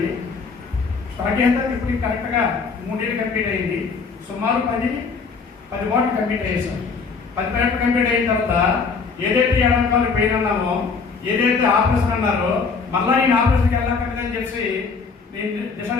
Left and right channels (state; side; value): quieter; right; 5.0 dB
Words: స్టార్ట్ చేసిన తర్వాత ఇప్పుడు కరెక్ట్గా 3 years కంప్లీట్ అయింది. సుమారు 10 వాటికి కంప్లీట్ అయ్యేసాం. 10 వాటికి కంప్లీట్ అయిన తర్వాత ఏదైతే ఎడమకాలు పెయిన్ అన్నామో, ఏదైతే ఆపరేషన్ అన్నారో మళ్ళా నేను ఆపరేషన్కి వెళ్ళక్కర్లేదని చెప్పి నేను